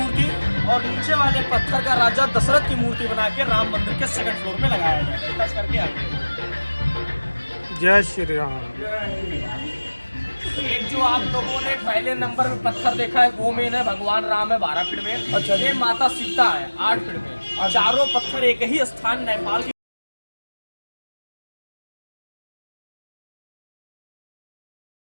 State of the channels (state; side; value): inverted; both; correlation -1.00